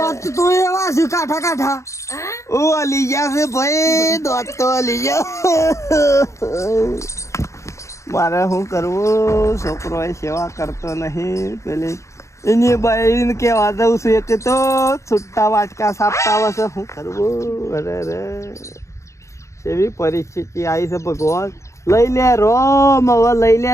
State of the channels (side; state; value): right; late; 0.14 ms